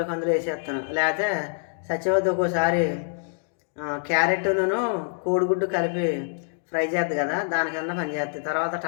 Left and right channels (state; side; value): silent; right; digital silence